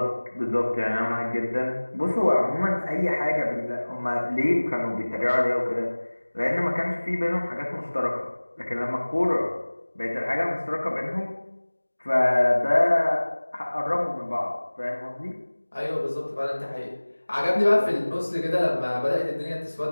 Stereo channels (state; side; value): inverted; both; correlation -1.00